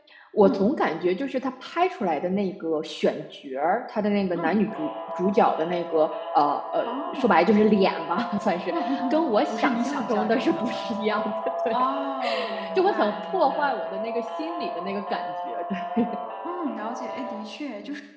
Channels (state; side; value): identical; both; correlation 1.00